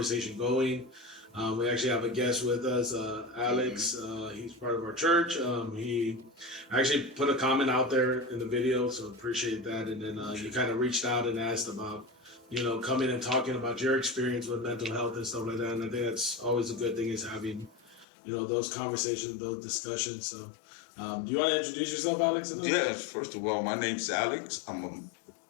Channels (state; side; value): drops out; right; at 18.1 s